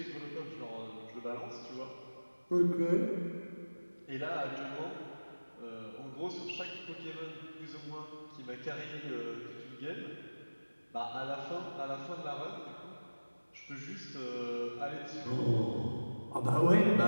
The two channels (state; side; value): inverted; both; correlation -1.00